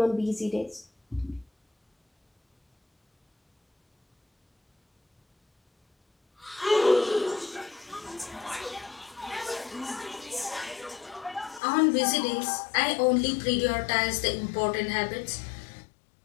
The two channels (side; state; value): right; drops out; at 11.6 s